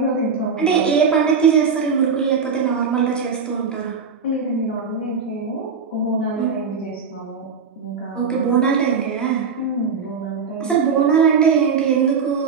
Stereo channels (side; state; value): left; quieter; 5.7 dB